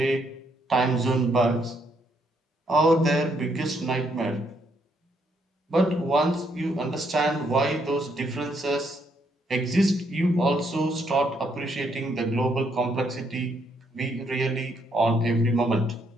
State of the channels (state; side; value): normal; both; correlation 0.73